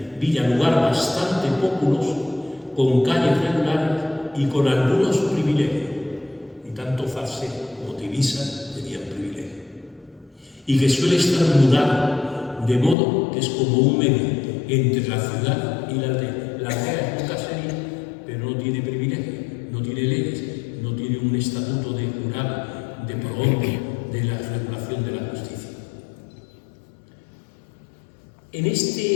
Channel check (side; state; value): right; drops out; at 13.0 s